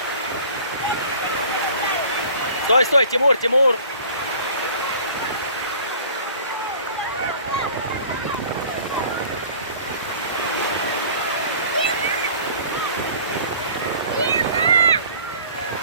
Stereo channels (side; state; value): both; inverted; correlation -0.47